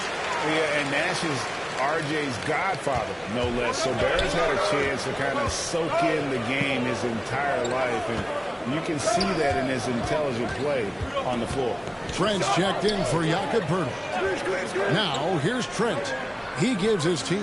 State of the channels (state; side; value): identical; both; correlation 1.00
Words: Yeah, and Nash is R.J.'s godfather, no less. So Barrett's had a chance to kind of soak in the game his entire life, and you can see that in his intelligent play on the floor. Trent's checked in for Jakob Poeltl. Now, here's Trent. He gives his